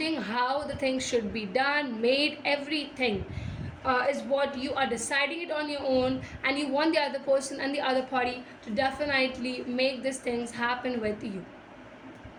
how the things should be done, made, everything is what you are deciding it on your own, and you want the other person and the other party to definitely make these things happen with you.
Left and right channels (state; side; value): identical; both; correlation 1.00